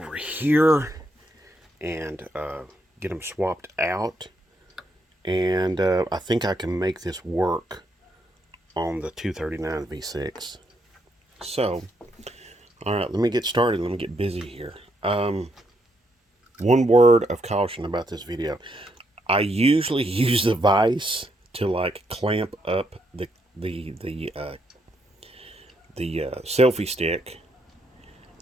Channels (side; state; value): both; normal; correlation 0.76